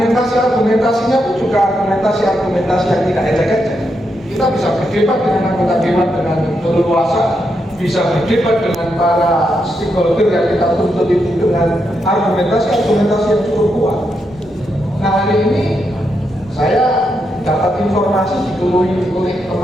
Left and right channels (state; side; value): normal; both; correlation 0.82